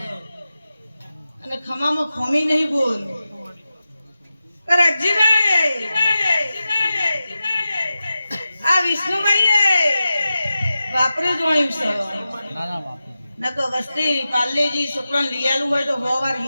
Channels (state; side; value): inverted; both; correlation -0.93